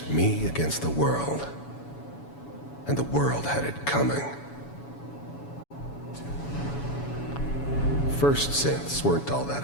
me against the world. and the world had it coming. First synths weren't all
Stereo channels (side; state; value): right; late; 7.1 ms